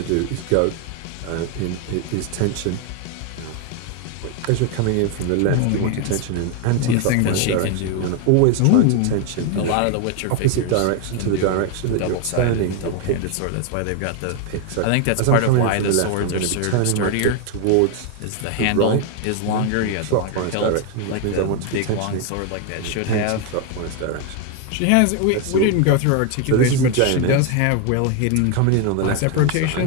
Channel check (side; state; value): both; different; correlation 0.01